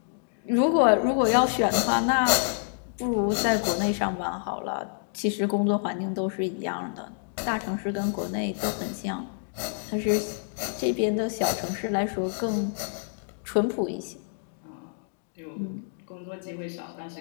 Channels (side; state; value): right; silent; digital silence